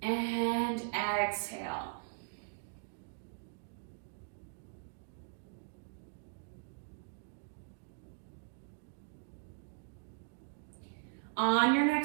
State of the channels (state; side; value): silent; left; digital silence